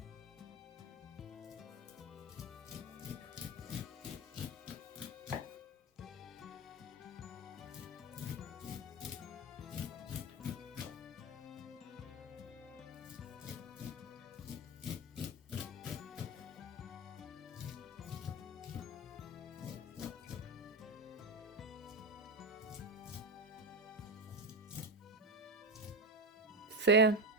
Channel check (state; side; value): normal; both; correlation 0.15